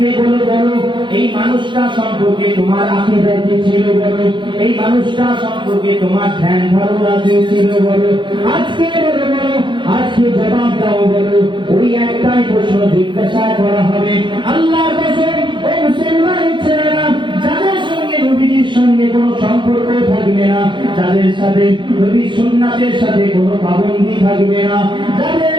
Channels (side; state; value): left; late; 0.23 ms